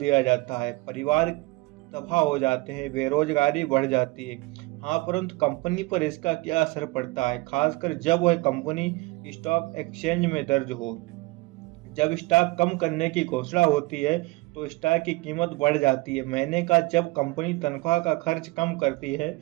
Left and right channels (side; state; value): left; quieter; 22.6 dB